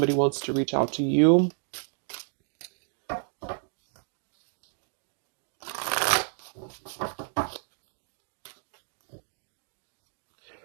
wants to reach out to you.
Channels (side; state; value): left; silent; digital silence